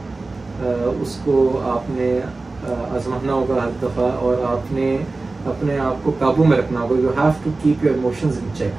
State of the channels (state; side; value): quieter; left; 3.4 dB